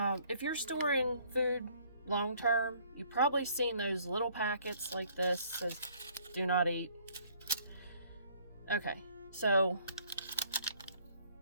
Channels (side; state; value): both; inverted; correlation -0.60